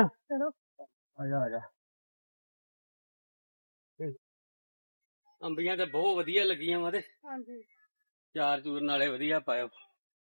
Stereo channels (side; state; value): both; inverted; correlation -1.00